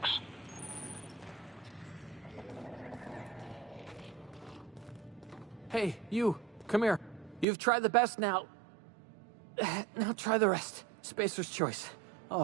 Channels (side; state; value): left; drops out; at 7.5 s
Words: Hey, you. Come here. You've tried the best now. Now try the rest. Spacer's choice.